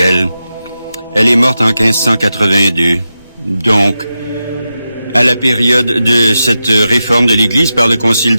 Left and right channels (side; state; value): both; inverted; correlation -0.90